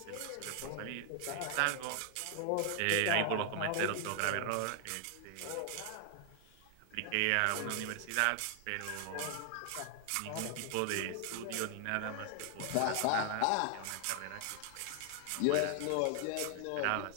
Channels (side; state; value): both; different; correlation 0.00